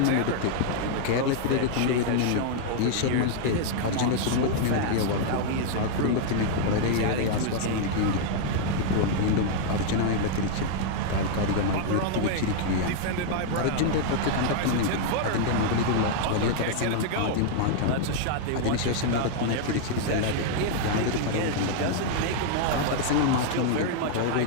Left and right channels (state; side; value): different; both; correlation -0.01